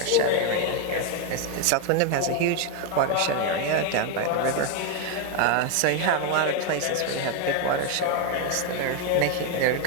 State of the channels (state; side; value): different; both; correlation 0.01